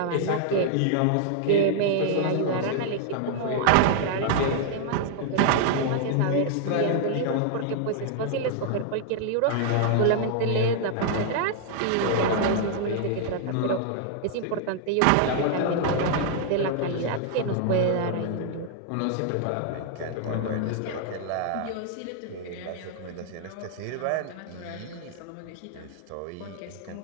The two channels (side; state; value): both; different; correlation -0.01